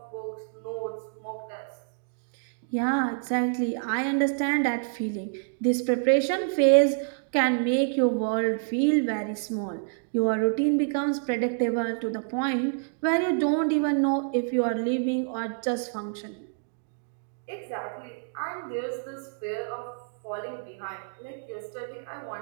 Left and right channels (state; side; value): silent; left; digital silence